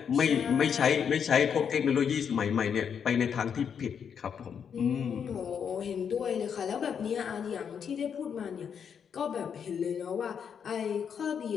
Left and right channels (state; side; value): quieter; right; 7.4 dB